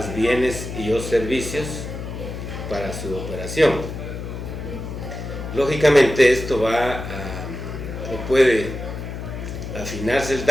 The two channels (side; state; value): left; noise; hum, 7 dB below the sound